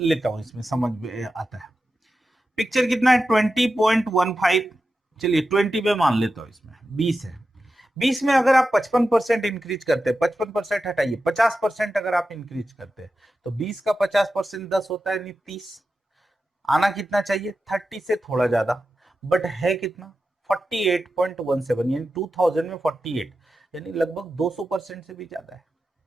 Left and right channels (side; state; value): both; normal; correlation 0.92